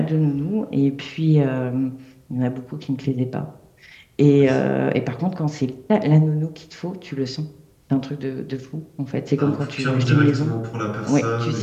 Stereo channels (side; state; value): both; identical; correlation 1.00